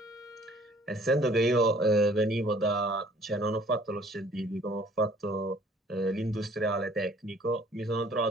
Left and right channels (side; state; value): both; normal; correlation 0.56